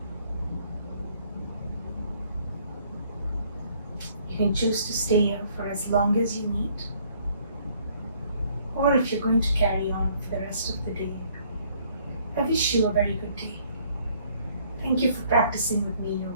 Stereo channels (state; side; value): inverted; both; correlation -0.63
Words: You can choose to stay here for as long as you need, or if you're going to carry on for the rest of the day, I wish you a very good day. Thank you for practicing with me,